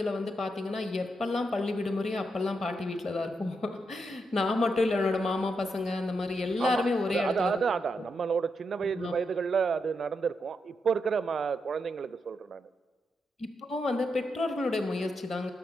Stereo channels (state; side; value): normal; both; correlation 0.83